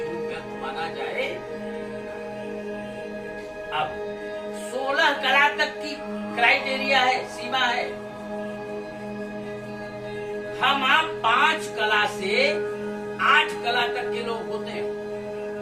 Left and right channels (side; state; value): both; identical; correlation 1.00